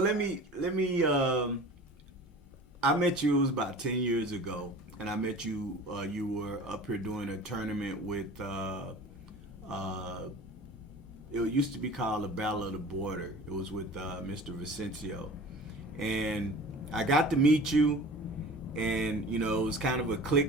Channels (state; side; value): normal; both; correlation 0.40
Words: me. I met you, it was about 10 years ago, and I met you. You were up here doing a tournament with. It used to be called the Battle of the Border. It was with Mr. Vicencio. And I got to meet you, and, it was kind of a